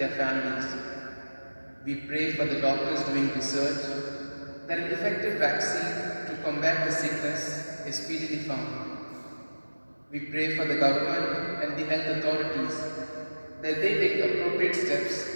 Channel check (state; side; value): inverted; both; correlation -1.00